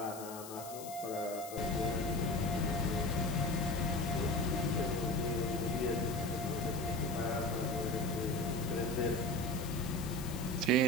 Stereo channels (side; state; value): left; noise; hiss, 13 dB below the sound